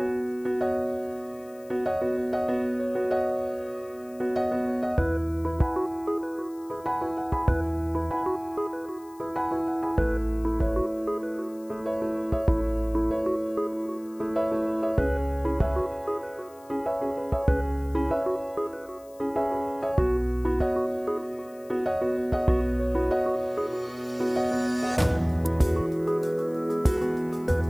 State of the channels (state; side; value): noise; left; hiss, 27 dB below the sound